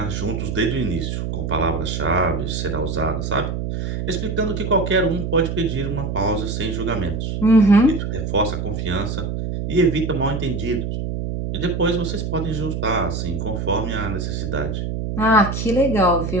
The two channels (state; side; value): noise; right; hum, 3 dB below the sound